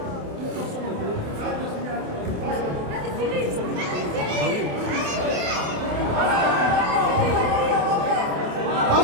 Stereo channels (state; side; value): late; left; 28 ms